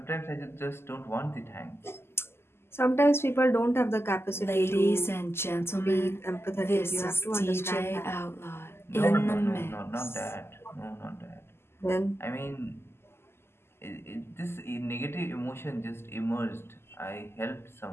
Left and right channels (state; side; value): late; right; 0.12 ms